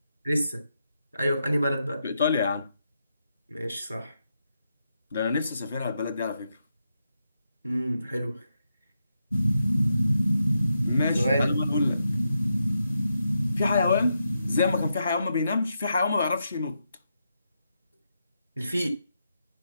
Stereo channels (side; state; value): both; inverted; correlation -0.84